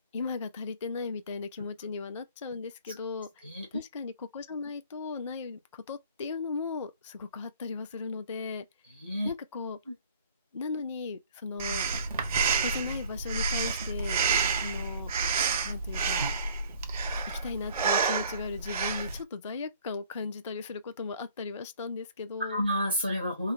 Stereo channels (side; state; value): both; inverted; correlation -0.53